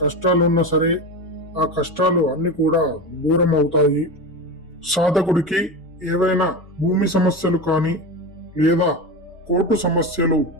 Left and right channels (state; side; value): normal; both; correlation 0.23